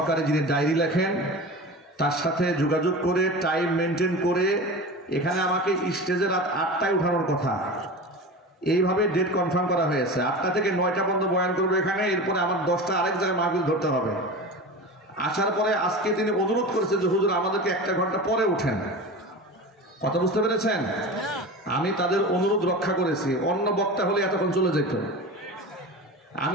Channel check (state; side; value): normal; both; correlation 0.30